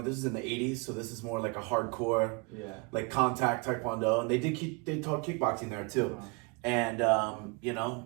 is in the 80s, so this is more a hardcore, contact Taekwondo. And they taught kickboxing there too. Uh-huh. And,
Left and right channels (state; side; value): quieter; left; 30.8 dB